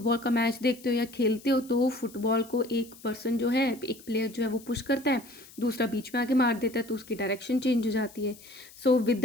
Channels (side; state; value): left; noise; hiss, 21 dB below the sound